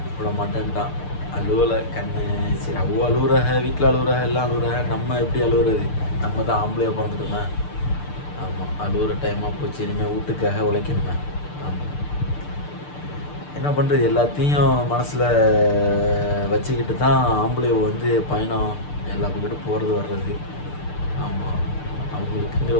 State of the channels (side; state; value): right; late; 6.7 ms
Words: விட மாட்டேன்ட்டான், அழுவலை கண்ணு. சரி, அவ்வளோ அழுகுறாக, வீட்டில் அழுகுறாக, எல்லாம் அழுகுறாக, நம்ம எப்படி அழுகுறது, நம்ம தான் ஆம்பளையாக பிறந்துட்டோமே. ஆமாம், அழுகுற டைமாக போச்சு, இனிமேல் வீட்டுக்காக உழைக்கணுமே. ஆமாம், என்ன பண்ணுறது, எல்லாத்தையும் மனசில் வச்சுக்கிட்டு தான் ஆம்பளை வந்து பயணம் எல்லா பக்கத்தும் போகிறது வர்றது. ஆமாம், அவங்களுக்குங்கிற